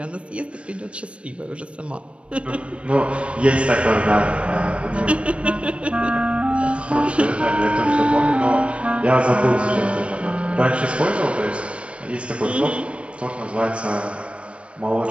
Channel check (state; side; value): late; left; 0.060 ms